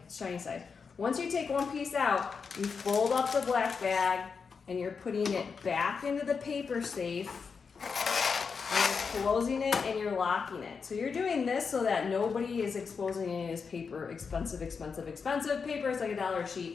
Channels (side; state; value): right; quieter; 5.5 dB